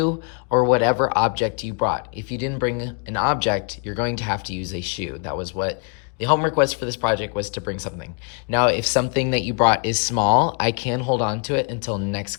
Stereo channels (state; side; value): quieter; right; 38.5 dB